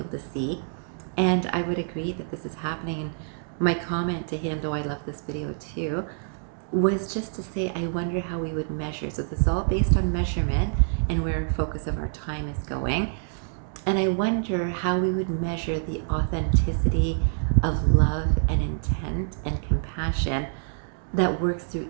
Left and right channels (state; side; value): silent; left; digital silence